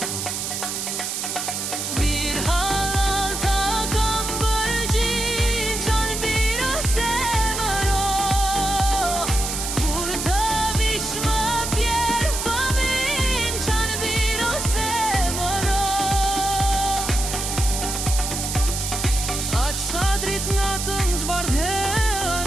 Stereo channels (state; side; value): noise; right; hiss, 3 dB below the sound